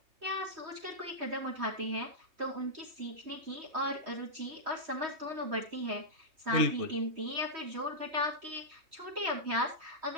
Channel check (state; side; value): late; left; 3.2 ms